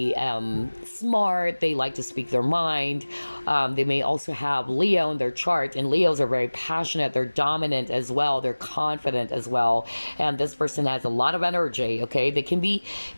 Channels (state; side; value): inverted; both; correlation -1.00